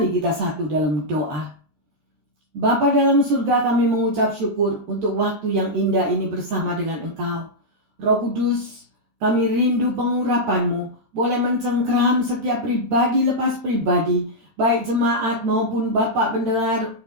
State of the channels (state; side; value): late; left; 13 ms